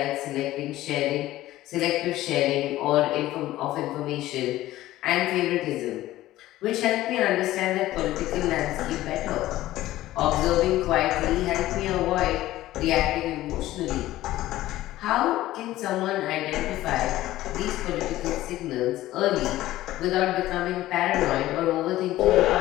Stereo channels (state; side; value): quieter; right; 15.5 dB